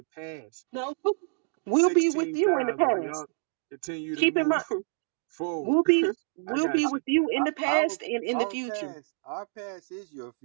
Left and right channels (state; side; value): silent; left; 60 dB below the other